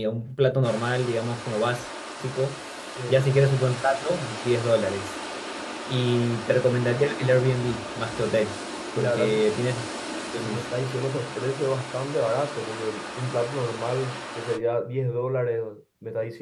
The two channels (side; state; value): both; identical; correlation 1.00